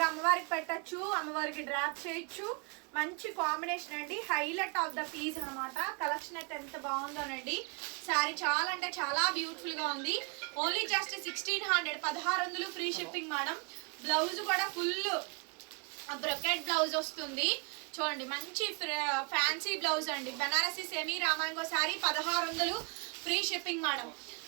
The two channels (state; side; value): quieter; left; 34.7 dB